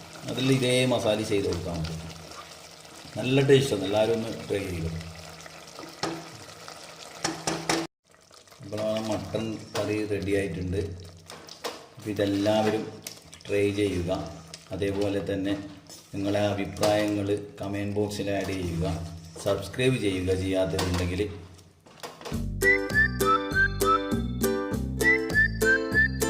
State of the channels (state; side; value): identical; both; correlation 1.00